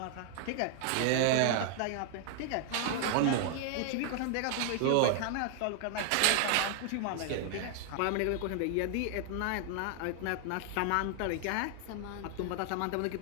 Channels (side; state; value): both; different; correlation 0.00